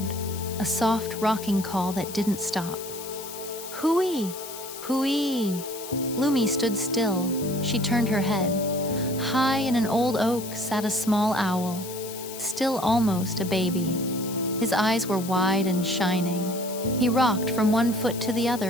a soft rocking call that didn't stop. Hooey! Hooey! Lumi stood still. She turned her head. High in an old oak sat a small owl, still almost a baby. His eyes were wide and shining. He rocked from one foot to the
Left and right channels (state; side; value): noise; left; hiss, 12 dB below the sound